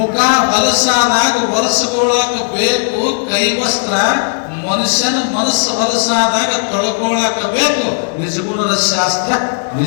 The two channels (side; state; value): right; silent; 71 dB below the other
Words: ಹೊಲಸಾದಾಗ ಒರೆಸ್ಕೊಳಕ ಬೇಕು ಕೈವಸ್ತ್ರ. ಮನುಷ್ಯನ ಮನಸ್ಸು ಹೊಲಸಾದಾಗ ತೊಳ್ಕೊಳಕ ಬೇಕು ನಿಜಗುಣದ ಶಾಸ್ತ್ರ